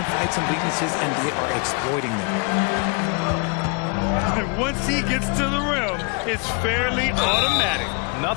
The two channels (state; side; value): quieter; right; 33.1 dB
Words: some weaknesses, and they are exploiting them. And once he gets to the rim, it's fairly automatic.